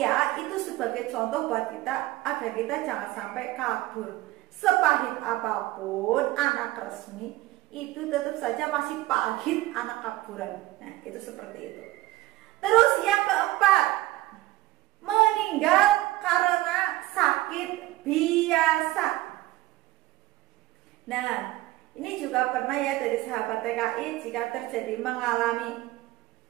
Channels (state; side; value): quieter; left; 17.3 dB